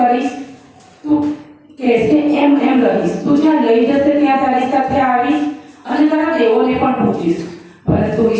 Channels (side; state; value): both; identical; correlation 1.00